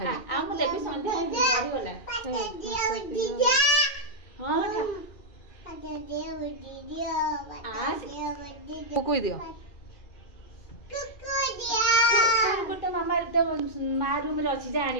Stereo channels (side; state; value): right; late; 2.4 ms